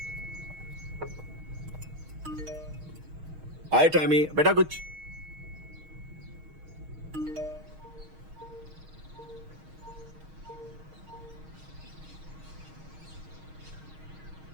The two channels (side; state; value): left; late; 6.4 ms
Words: हाय टैमी, बेटा कुछ।